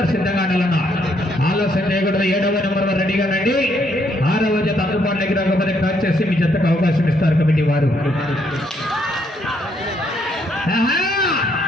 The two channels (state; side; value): normal; both; correlation 0.72